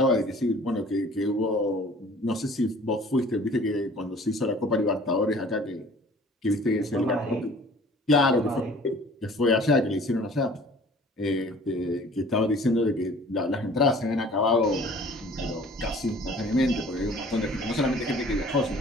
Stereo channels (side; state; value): both; normal; correlation 0.50